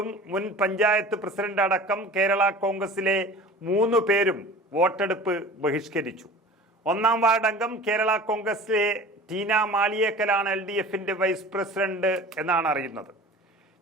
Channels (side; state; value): both; normal; correlation 0.40